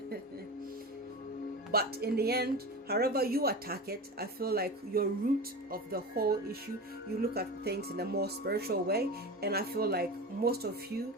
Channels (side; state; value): both; normal; correlation 0.28